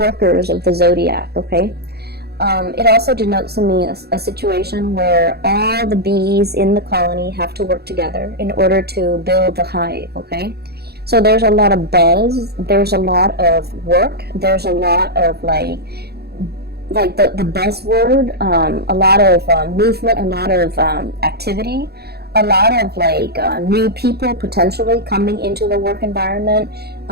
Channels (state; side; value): late; left; 0.47 ms